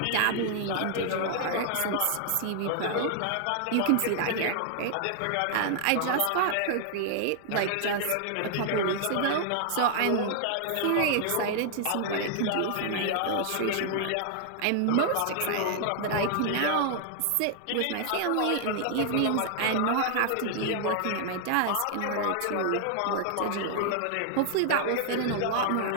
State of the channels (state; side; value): different; both; correlation 0.00